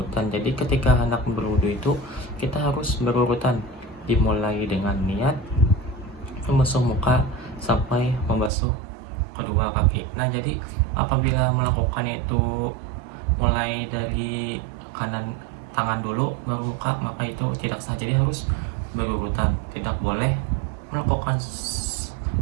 Jadi ketika hendak berwudu itu kita harus berurutan, dimulai dengan niat membasuh muka sampai membasuh kedua kaki. Nah, jadi apabila melakukan itu mulai dari kanan tangan dulu baru muka, maka itu tidak sah. Jadi harus berurutan, tidak boleh melakukan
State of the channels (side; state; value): left; drops out; at 8.5 s